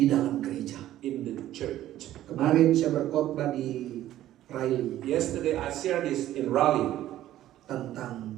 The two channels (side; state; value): left; quieter; 13.3 dB